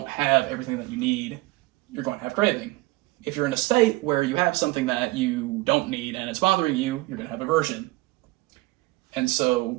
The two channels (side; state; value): left; quieter; 20.4 dB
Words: have everything that you need, you're going to have craving. If you're in a state where you have something that you don't need and it's bothering you, you're going to have aversion. And